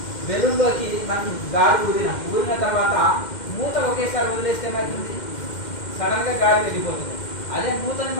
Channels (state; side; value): late; right; 2.1 ms